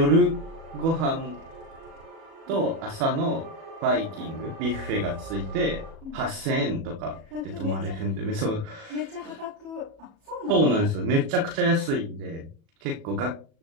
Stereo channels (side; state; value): left; late; 37 ms